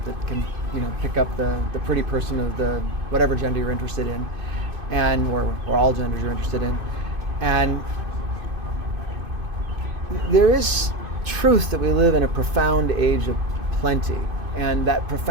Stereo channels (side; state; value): left; late; 2.5 ms